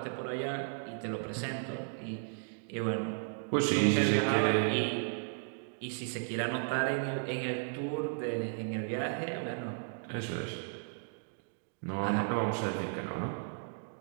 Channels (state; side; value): silent; left; digital silence